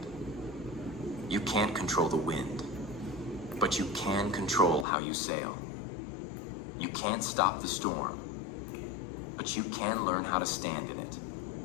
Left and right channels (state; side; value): drops out; right; at 4.9 s